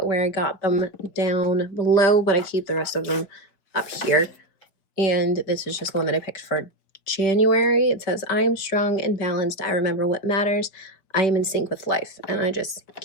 where I got them down below, but I keep the rest of them up here. And this is just one that I picked for January. It says, I am strong and balanced. I remember what matters. I am in sync with life. And I just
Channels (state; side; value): late; right; 5.2 ms